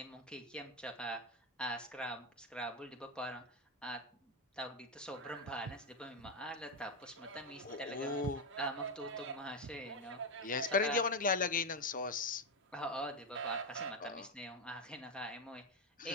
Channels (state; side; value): normal; both; correlation 0.08